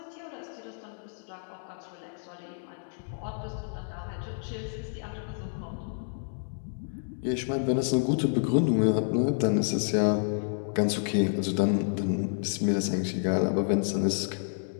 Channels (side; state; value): right; silent; digital silence